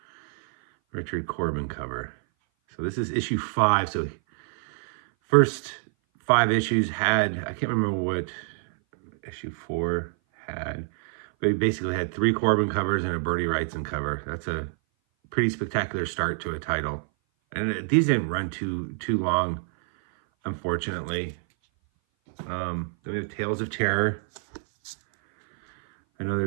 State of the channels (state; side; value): silent; left; 58 dB below the other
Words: Richard Corbin cover. So this is issue 5. So first 5 issues had, I can't remember what issue 4 had, but he basically had 3 Corbin covers and a Bertie Wrightson cover. That's a pretty spectacular start to a title. And these didn't run too long, unfortunately. Then we have Tales of Terror. I know